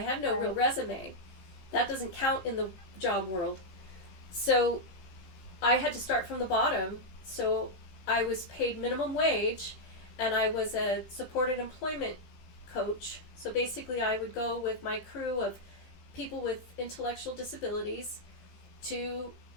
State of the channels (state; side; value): late; right; 15 ms